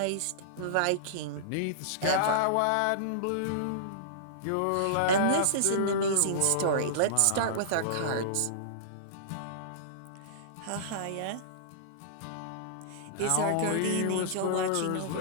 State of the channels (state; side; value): different; both; correlation -0.03